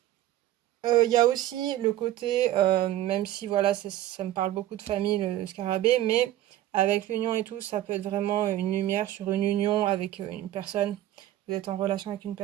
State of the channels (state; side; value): quieter; left; 13.6 dB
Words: Il y a aussi le côté, même si voilà, ça me parle beaucoup de famille, le scarabée, mais avec l'union et tout, ça peut être vraiment une lumière sur une union avec une personne. Vous êtes en relation avec une